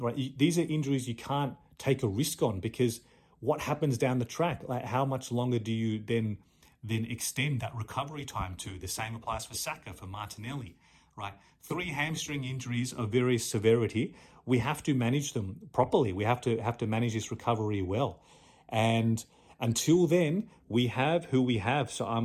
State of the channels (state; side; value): identical; both; correlation 1.00